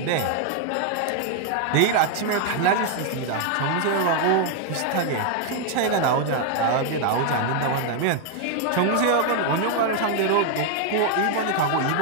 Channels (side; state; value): both; different; correlation 0.00